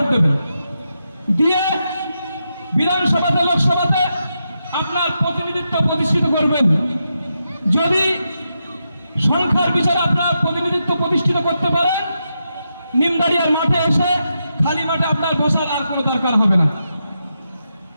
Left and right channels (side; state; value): both; inverted; correlation -0.85